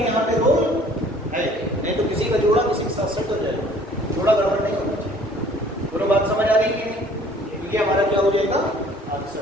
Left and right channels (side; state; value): both; normal; correlation 0.54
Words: यहाँ पे रोल है, नहीं तो किसी का जोड़ा किसी के साथ सेट हो जाएगा, थोड़ा गड़बड़ नहीं होना चाहिए। दोनों बात समझ आ रही है? क्योंकि हमारा क्या हो जाएगा?